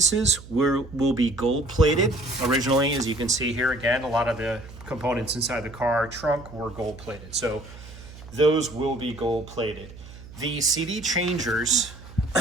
will be gold plated. Originally, as you can see here again, a lot of the components inside the car trunk were gold plated. So those will be gold plated. The CD changers,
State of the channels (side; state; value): right; noise; hum, 17 dB below the sound